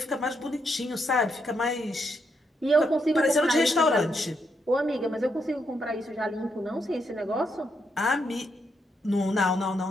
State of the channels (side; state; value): both; normal; correlation 0.79